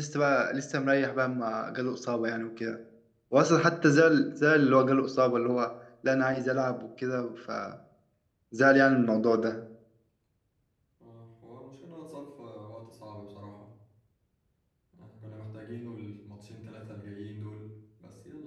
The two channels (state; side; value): identical; both; correlation 1.00